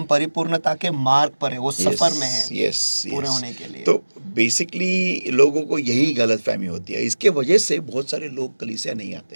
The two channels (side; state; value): both; inverted; correlation -1.00